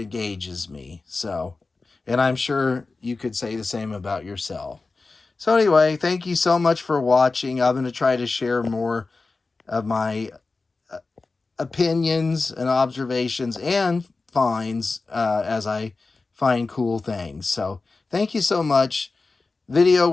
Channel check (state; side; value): quieter; right; 3.8 dB